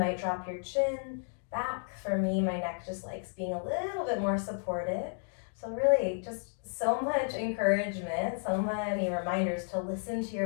drop your chin back. For me, my neck just likes being a little bit more supported. So really just so much encouragement, so many reminders to listen to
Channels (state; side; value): silent; right; 56 dB below the other